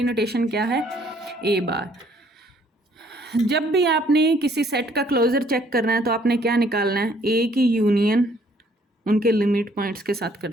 नोटेशन क्या है, A बार। जब भी आपने किसी सेट का क्लोजर चेक करना है तो आपने क्या निकालना है, A की यूनियन उनके लिमिट पॉइंट्स के साथ कर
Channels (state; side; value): normal; both; correlation 0.63